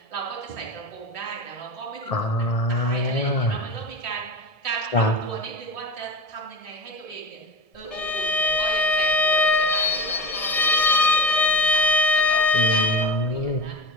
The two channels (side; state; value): right; late; 1.7 ms